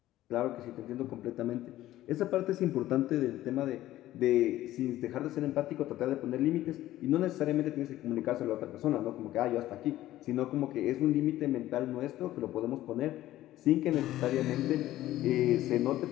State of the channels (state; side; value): quieter; right; 14.6 dB